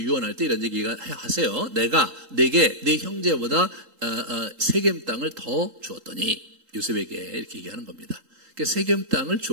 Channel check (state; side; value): late; left; 3.8 ms